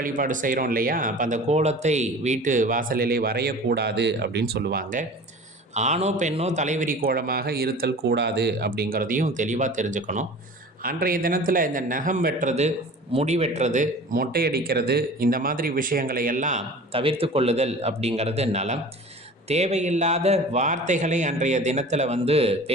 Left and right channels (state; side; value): normal; both; correlation 0.41